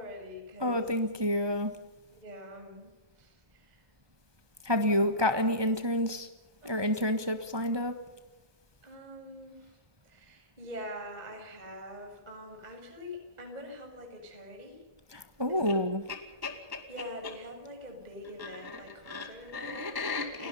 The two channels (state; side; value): late; left; 1.2 ms